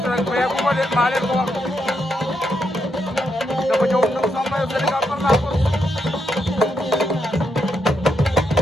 rek mais bu ma leen maa leen ko wax dafa ñëw ñëw sama maillot Sénégal par la force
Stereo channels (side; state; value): both; normal; correlation 0.80